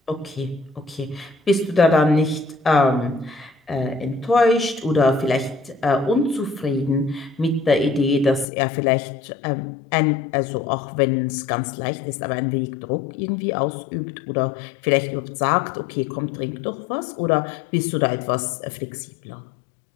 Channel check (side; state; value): right; drops out; at 8.5 s